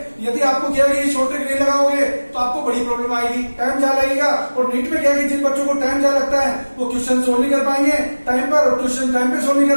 यदि आपको क्या है शॉर्ट ट्रिक नहीं लगाओगे तो आपको बड़ी प्रॉब्लम आएगी, टाइम ज्यादा लगेगा। और नीट में क्या है जिन बच्चों को टाइम ज्यादा लगता है वो क्वेश्चन सोल्व नहीं कर पाएंगे टाइम पर, और क्वेश्चन टाइम पे सोल्व नहीं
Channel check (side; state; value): both; inverted; correlation -1.00